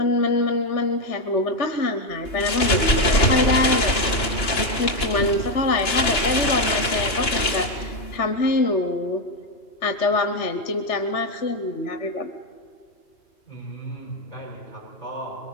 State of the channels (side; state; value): right; late; 2.9 ms